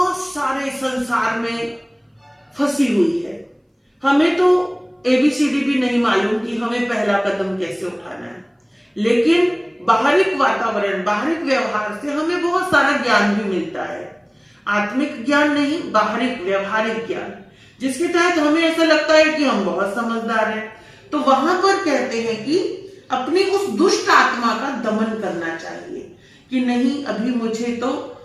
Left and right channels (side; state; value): both; identical; correlation 1.00